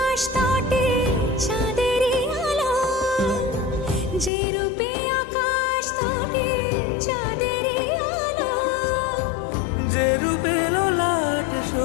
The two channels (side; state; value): right; drops out; at 4.3 s